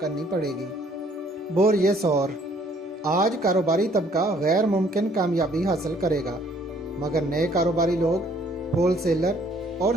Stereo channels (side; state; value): both; normal; correlation 0.62